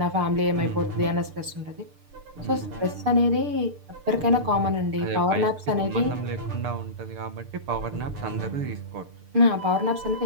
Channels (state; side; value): late; left; 6.7 ms